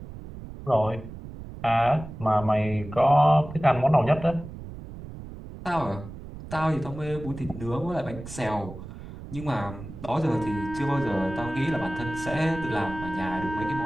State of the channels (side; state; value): right; noise; rumble, 12 dB below the sound